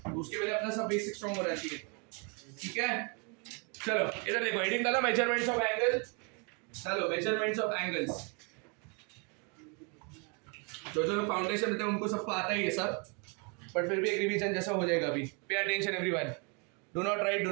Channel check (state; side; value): quieter; left; 34.2 dB